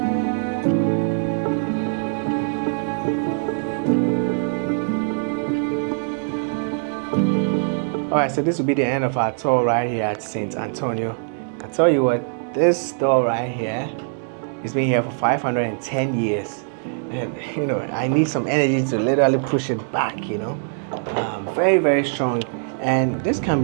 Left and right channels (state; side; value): silent; left; 64 dB below the other